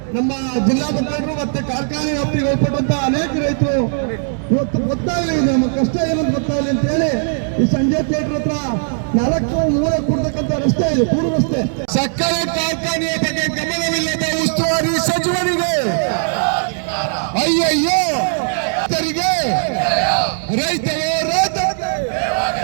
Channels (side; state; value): left; silent; 67 dB below the other